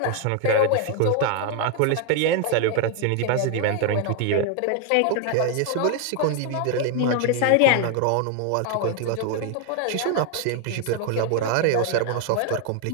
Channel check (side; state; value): both; different; correlation 0.00